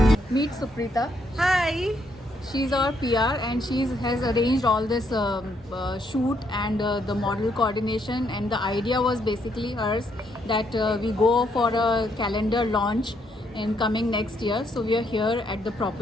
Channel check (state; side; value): normal; both; correlation 0.74